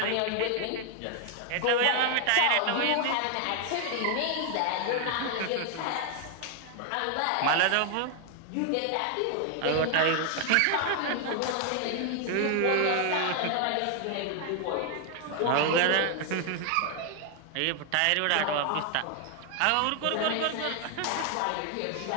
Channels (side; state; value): both; different; correlation 0.00